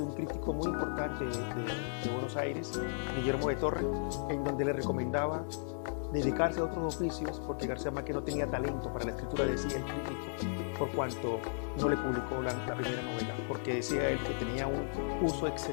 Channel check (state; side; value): silent; right; 54 dB below the other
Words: un crítico muy importante de Buenos Aires, Guillermo de Torre, en donde le recomendaba dedicarse a otros oficios porque García Márquez no tenía talento para la escritura, decía el crítico, por cuanto no le publicó la primera novela, porque decía él que tenía un uso